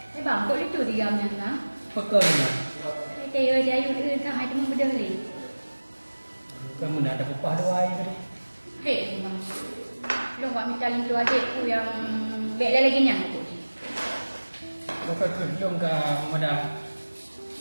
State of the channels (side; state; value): both; inverted; correlation -1.00